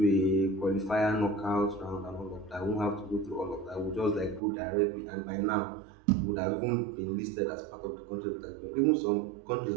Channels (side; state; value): left; drops out; at 4.4 s